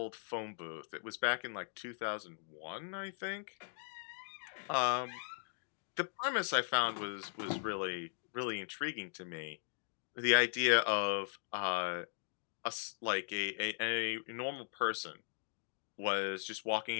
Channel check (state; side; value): silent; right; digital silence